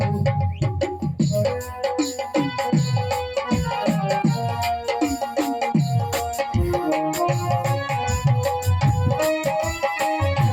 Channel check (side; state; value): both; identical; correlation 1.00